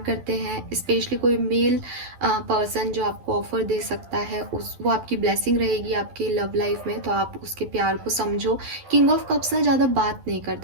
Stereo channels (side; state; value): left; late; 12 ms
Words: करते हैं, स्पेशली कोई मेल पर्सन जो आपको ऑफर दे सकता है, उस वो आपकी ब्लेसिंग रहेगी आपकी लव लाइफ में, तो आप उसके प्यार को समझो। किंग ऑफ कप्स ना ज़्यादा बात नहीं